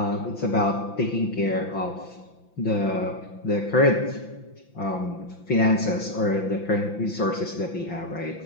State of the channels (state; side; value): late; right; 5.9 ms